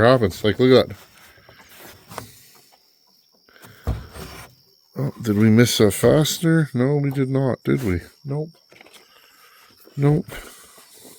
happens. Like, look at that. Oh, did we miss a fastener? No, we did not, did we? Nope. Nope.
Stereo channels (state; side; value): identical; both; correlation 1.00